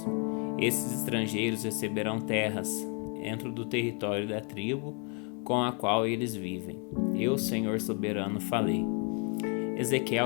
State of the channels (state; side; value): quieter; right; 36.6 dB